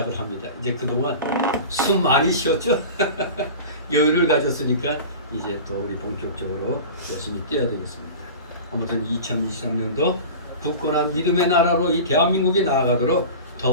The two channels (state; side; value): inverted; both; correlation -0.34